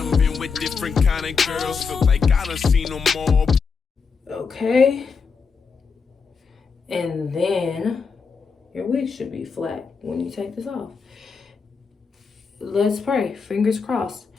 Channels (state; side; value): quieter; right; 5.4 dB